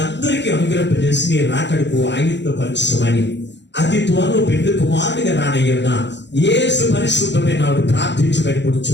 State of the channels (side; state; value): right; late; 0.52 ms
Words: అనుగ్రహింపజేసి నీ రాకడకు ఆయుధపరచమని అతి త్వరలో పెళ్లి కుమారుడిగా రానయ్యున్న యేసు పరిశుద్ధమైన నాడు ప్రార్థించి